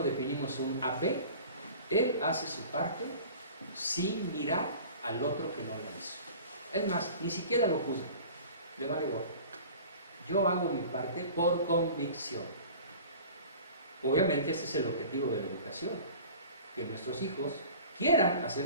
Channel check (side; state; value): both; inverted; correlation -0.42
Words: definimos un AP? Él hace su parte sin mirar al otro que no la hizo. Es más, ni siquiera lo juzga, le vale gorro. Yo hago mi parte por convicción. Obviamente ese es el objetivo de la educación, que nuestros hijos quieran